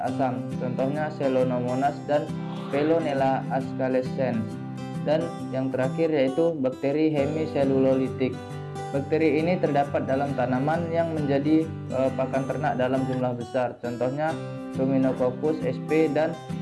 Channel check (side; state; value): both; identical; correlation 1.00